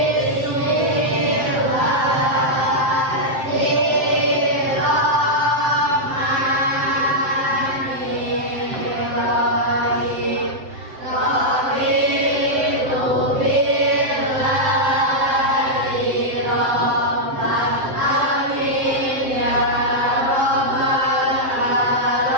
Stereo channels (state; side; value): late; left; 7.7 ms